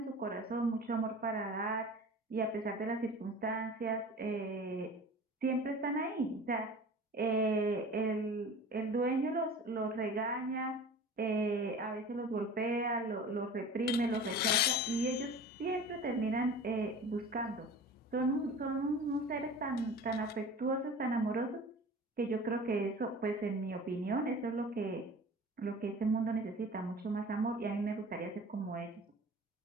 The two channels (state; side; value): normal; both; correlation 0.39